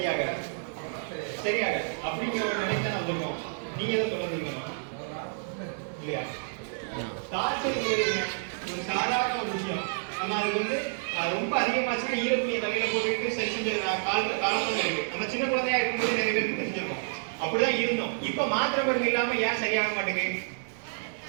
அப்படிங்கிற ஒரு நிலைக்கு தான் வந்திருக்கோம். நீங்க எதை சொல்லுங்க இல்லையா? காய்ச்சல் ஒரு சாதாரண ஒரு விஷயம். நம்ம அது வந்து ரொம்ப அதிகமாச்சுன்னா ஈரத்துணியை தலையில போட்டுட்டு சரி செஞ்ச காலத்துல இருக்கு. நம்ம சின்ன குழந்தையா இருக்கும்போது நிறைய பேருக்கு தெரிஞ்சிருக்கோம், அப்படிதான் இருந்தோம். இப்ப மாத்திரை மருந்து இல்லாம ஏன் சரியாக மாட்டேங்குது?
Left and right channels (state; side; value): silent; left; 58 dB below the other